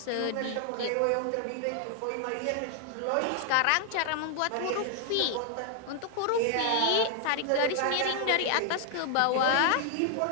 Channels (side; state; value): both; different; correlation 0.00